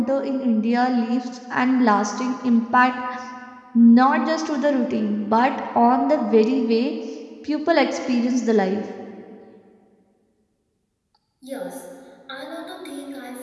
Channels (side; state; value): both; identical; correlation 1.00